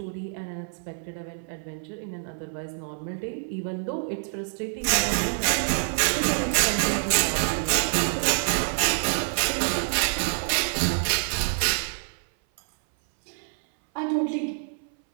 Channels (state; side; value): silent; left; 58 dB below the other